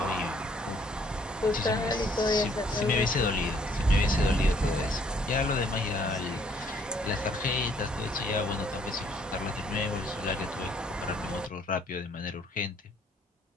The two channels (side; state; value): both; normal; correlation 0.64